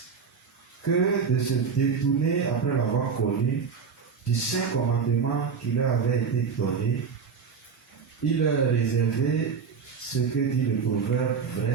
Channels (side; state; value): left; quieter; 5.9 dB